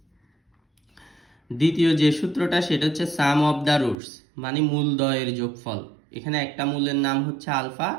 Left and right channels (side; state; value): left; drops out; at 4.0 s